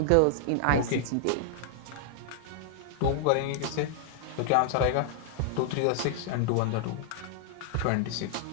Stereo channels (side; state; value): both; different; correlation -0.01